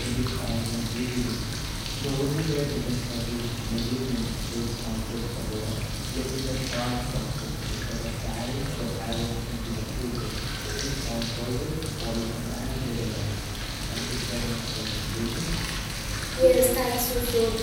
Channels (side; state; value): both; identical; correlation 1.00